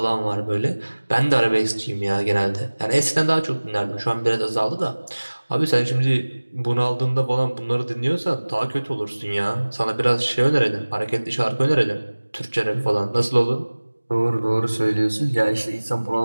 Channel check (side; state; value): both; inverted; correlation -1.00